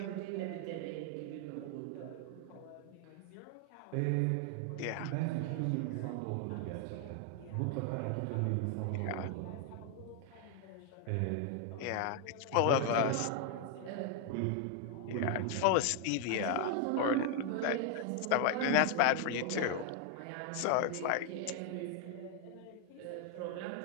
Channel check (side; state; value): both; different; correlation 0.00